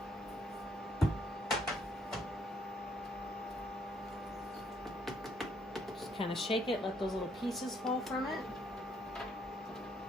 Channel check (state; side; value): normal; both; correlation 0.69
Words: Just kind of shake it, let those little pieces fall from it.